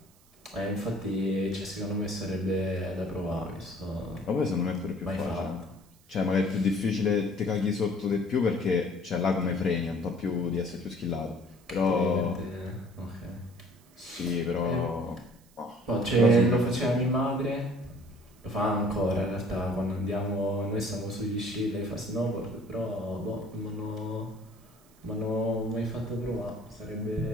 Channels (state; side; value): noise; right; hiss, 29 dB below the sound